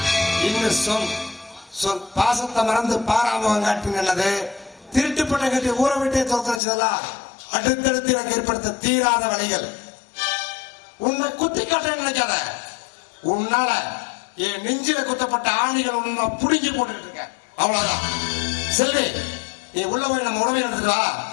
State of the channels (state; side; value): drops out; right; at 6.6 s